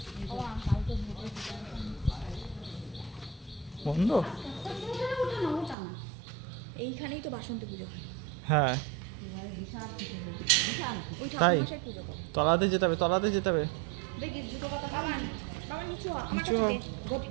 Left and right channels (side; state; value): left; drops out; at 5.8 s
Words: বন্ধ? এইখানেই তো বাসন্তী পুজো হয়। হ্যাঁ তাই, তলাতে যেতে হবে, তলাতে যেতে হবে।